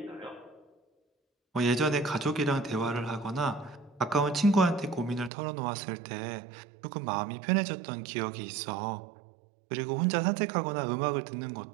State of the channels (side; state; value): left; drops out; at 5.3 s